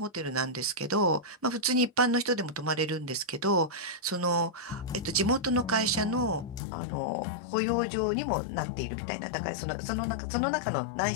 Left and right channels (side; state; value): right; drops out; at 6.6 s